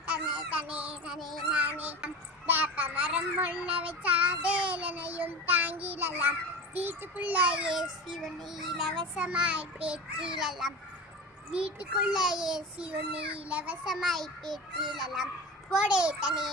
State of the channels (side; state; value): both; normal; correlation 0.30